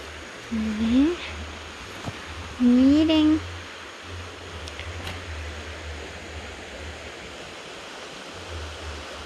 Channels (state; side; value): identical; both; correlation 1.00